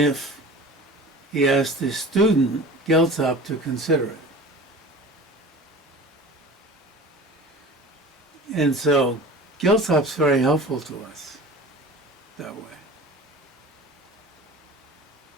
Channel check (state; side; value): normal; both; correlation 0.39